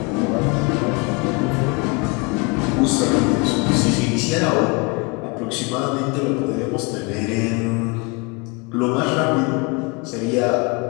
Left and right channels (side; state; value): right; quieter; 29.5 dB